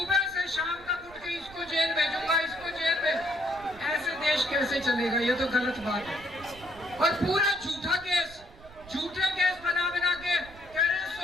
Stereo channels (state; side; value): noise; right; rumble, 20 dB below the sound